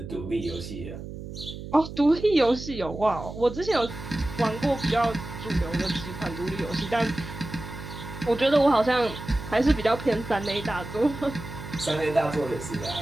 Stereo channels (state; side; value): noise; right; hum, 10 dB below the sound